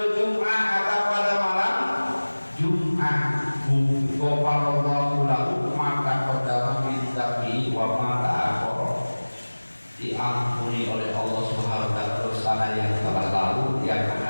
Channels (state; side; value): inverted; both; correlation -1.00